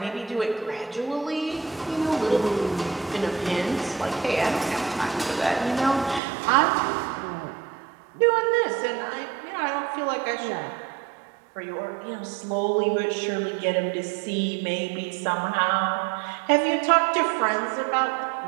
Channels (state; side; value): drops out; left; at 6.2 s